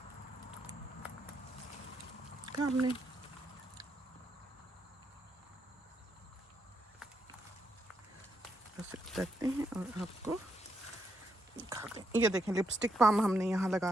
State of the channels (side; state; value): both; normal; correlation 0.79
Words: हमने। उतरते हैं और आपको दिखाते हैं। ये देखें, लिपस्टिक पाम हमने यहाँ लगा